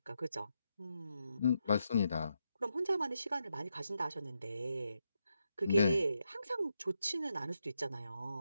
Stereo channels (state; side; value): inverted; both; correlation -0.83